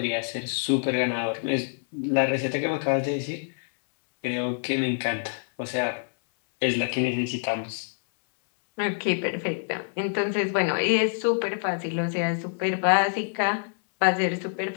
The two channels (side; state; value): right; silent; 61 dB below the other